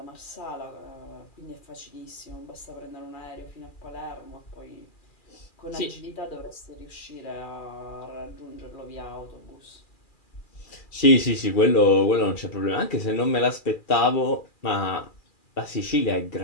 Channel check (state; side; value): late; right; 2.4 ms